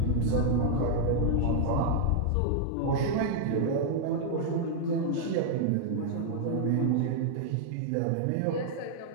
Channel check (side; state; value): both; different; correlation -0.01